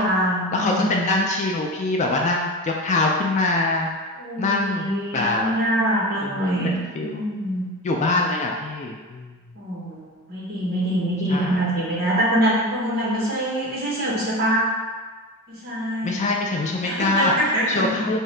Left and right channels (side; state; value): both; normal; correlation 0.26